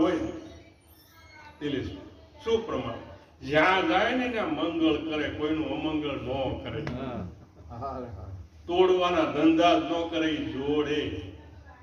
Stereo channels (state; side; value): identical; both; correlation 1.00